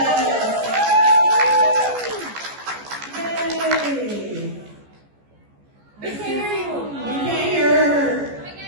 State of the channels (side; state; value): left; late; 14 ms